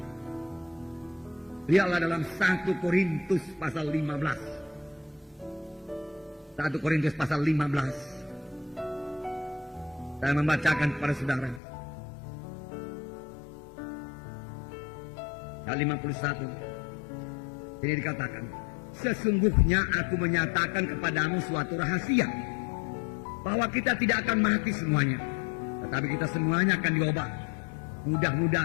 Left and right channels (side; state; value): right; drops out; at 11.6 s